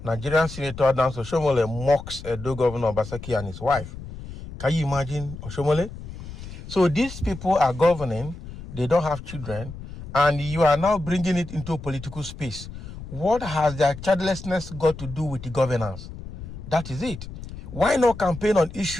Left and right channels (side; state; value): left; noise; rumble, 12 dB below the sound